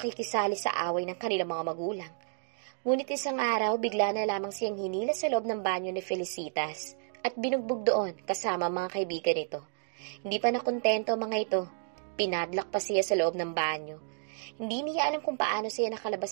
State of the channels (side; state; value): left; silent; digital silence